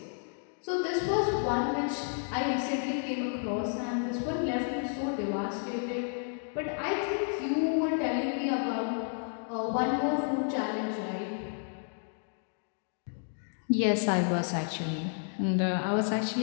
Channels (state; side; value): silent; right; 57 dB below the other